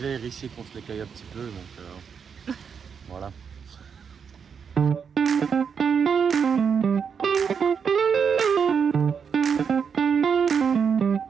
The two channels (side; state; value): left; quieter; 6.6 dB